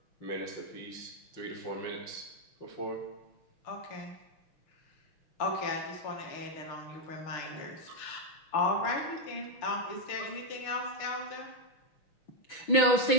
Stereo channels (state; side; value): late; right; 6.1 ms